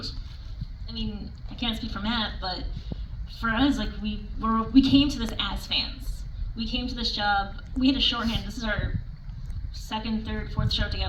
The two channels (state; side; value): identical; both; correlation 1.00